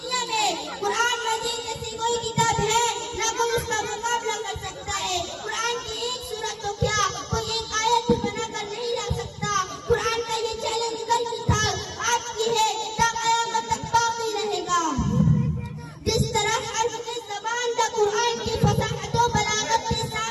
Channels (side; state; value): both; identical; correlation 1.00